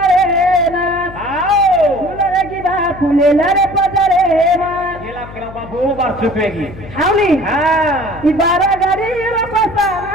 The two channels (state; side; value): noise; left; hum, 16 dB below the sound